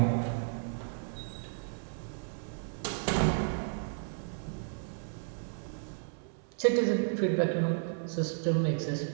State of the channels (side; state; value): left; silent; 56 dB below the other